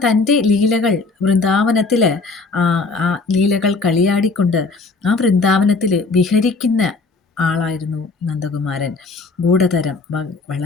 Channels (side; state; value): right; quieter; 3.9 dB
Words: തൻ്റെ ലീലകൾ വൃന്ദാവനത്തിൽ ആ ലീലകൾ കളിയാടിക്കൊണ്ട് ആ വൃന്ദാവനത്തിൽ വിഹരിക്കുന്ന ആളായിരുന്നു നന്ദകുമാരൻ. ഗൂഢതരം,